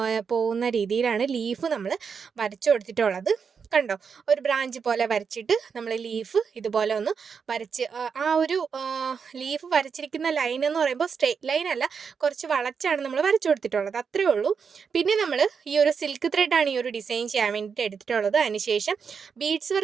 പോകുന്ന രീതിയിലാണ് ലീഫ് നമ്മൾ വരച്ചു കൊടുത്തിട്ടുള്ളത്. കണ്ടോ, ഒരു ബ്രാഞ്ച് പോലെ വരച്ചിട്ട് നമ്മൾ ലീഫ് ഇതുപോലെ ഒന്ന് വരച്ച് ആ ഒരു ലീഫ് വരച്ചിരിക്കുന്ന ലൈൻ എന്ന് പറയുമ്പോൾ സ്ട്രെയിറ്റ് ലൈൻ അല്ല, കുറച്ച് വളച്ചാണ് നമ്മൾ വരച്ചു കൊടുത്തിട്ടുള്ളത്, അത്രേ ഉള്ളൂ. പിന്നെ നമ്മൾ ഈ ഒരു സിൽക്ക് ത്രെഡാണ് ഈ ഒരു ഡിസൈൻ ചെയ്യാൻ വേണ്ടിയിട്ട് എടുത്തിട്ടുള്ളത്. അതിനുശേഷം ബീഡ്സ്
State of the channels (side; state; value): left; quieter; 6.2 dB